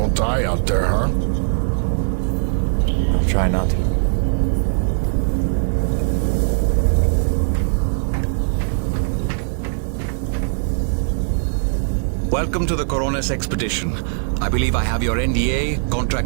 die out there, huh? I'll try not to. Welcome to the Coronas expedition. I believe I have your NDA,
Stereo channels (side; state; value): left; silent; digital silence